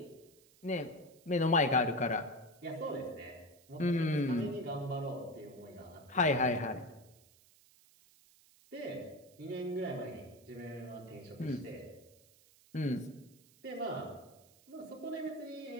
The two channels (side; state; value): right; noise; hiss, 27 dB below the sound